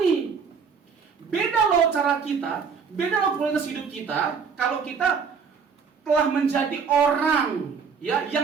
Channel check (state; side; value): quieter; left; 5.9 dB